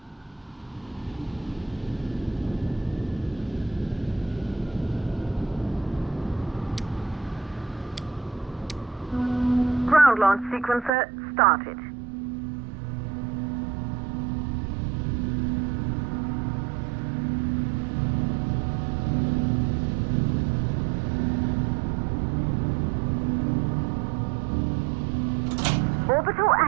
Ground launch sequencer started. Orbital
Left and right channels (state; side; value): drops out; left; at 10.9 s